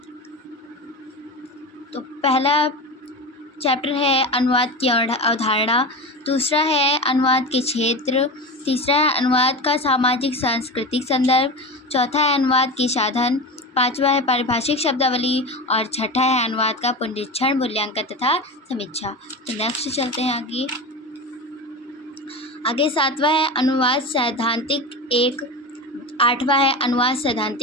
तो पहला चैप्टर है अनुवाद की अवधारणा, दूसरा है अनुवाद के क्षेत्र, तीसरा है अनुवाद का सामाजिक सांस्कृतिक संदर्भ, चौथा है अनुवाद के साधन, पांचवा है पारिभाषिक शब्दावली और छठा है अनुवाद का पुनरीक्षण, मूल्यांकन तथा समीक्षा। तो नेक्स्ट चलते हैं आगे सातवां है अनुवाद सैद्धांतिक 1, आठवां है अनुवाद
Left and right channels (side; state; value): both; normal; correlation 0.26